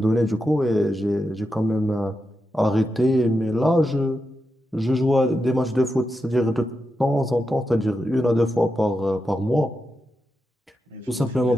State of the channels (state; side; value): normal; both; correlation 0.88